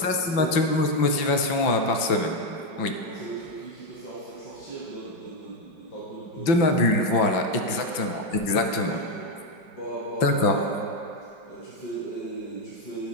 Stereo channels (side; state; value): right; late; 5.8 ms